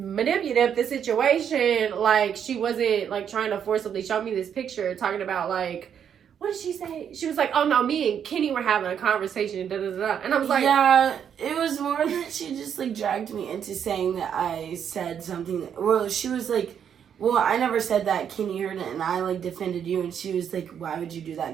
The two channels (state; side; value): quieter; left; 8.3 dB